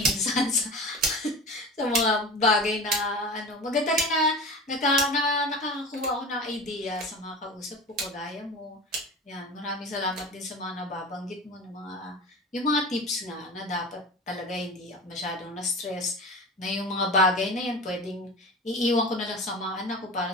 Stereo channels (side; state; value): both; normal; correlation 0.33